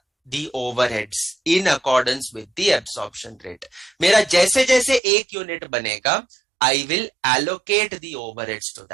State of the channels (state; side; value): drops out; left; at 5.0 s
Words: the overheads in accordance with the absorption rate. मेरा जैसे जैसे एक unit बनेगा, I will allocate the overheads to